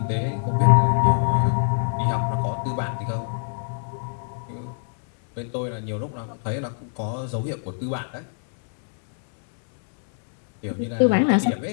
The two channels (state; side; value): silent; right; digital silence